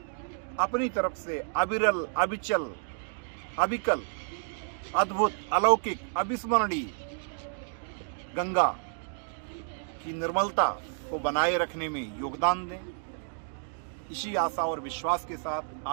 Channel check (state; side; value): silent; left; digital silence